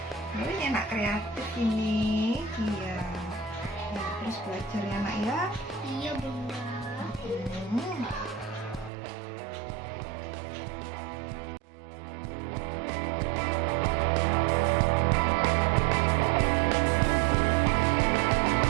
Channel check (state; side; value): drops out; left; at 8.9 s